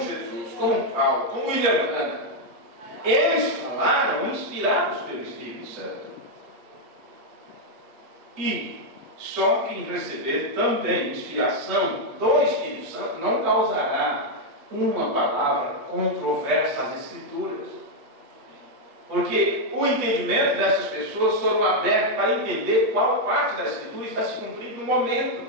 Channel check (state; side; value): late; left; 8.3 ms